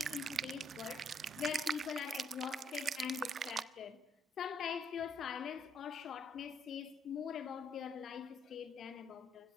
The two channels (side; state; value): both; normal; correlation 0.69